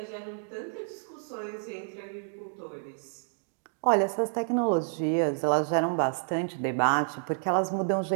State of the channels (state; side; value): silent; left; digital silence